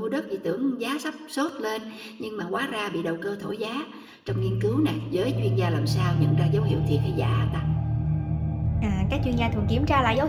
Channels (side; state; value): both; identical; correlation 1.00